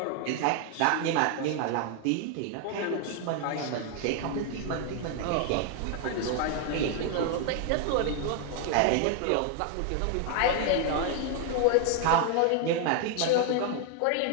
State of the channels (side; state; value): both; different; correlation 0.00